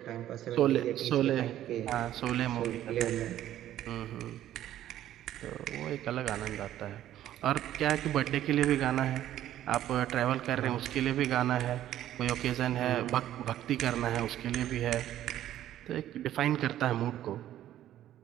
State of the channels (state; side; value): quieter; left; 12.5 dB